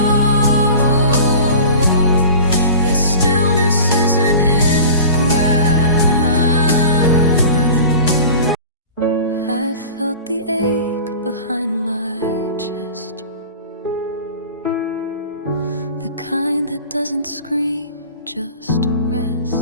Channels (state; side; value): inverted; both; correlation -0.39